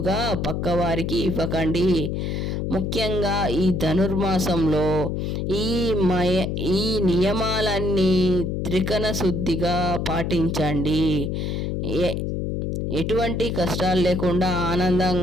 పక్కవారికి ఇవ్వకండి. ముఖ్యంగా ఈ ధనుర్మాసంలో ఈ నియమాలన్నీ త్రికరణ శుద్ధిగా పాటించండి. ఎటువంటి కష్టాలు లేకుండా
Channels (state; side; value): noise; left; hum, 1 dB below the sound